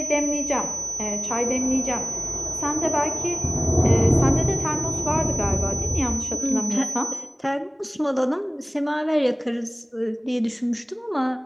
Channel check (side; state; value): both; identical; correlation 1.00